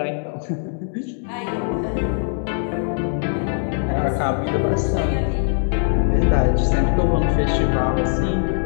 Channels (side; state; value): right; silent; 65 dB below the other